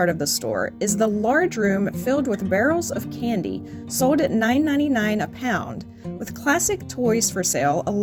of the store is the large room filled with barrels of candy sold at $9.99 a pound, with classic toys for sale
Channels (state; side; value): identical; both; correlation 1.00